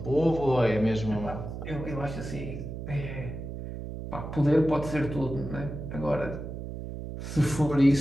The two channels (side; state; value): right; noise; hum, 8 dB below the sound